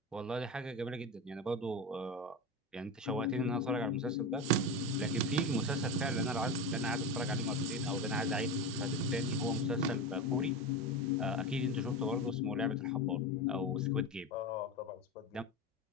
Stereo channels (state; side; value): normal; both; correlation 0.22